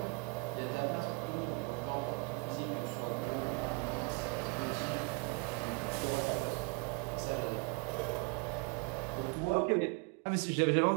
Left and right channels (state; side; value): quieter; left; 29.8 dB